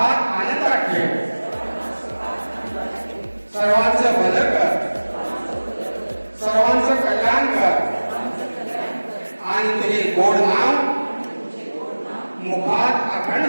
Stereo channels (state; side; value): inverted; both; correlation -1.00